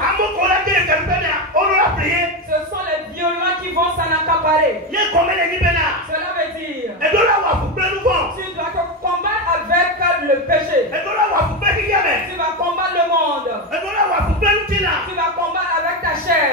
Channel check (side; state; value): both; normal; correlation 0.13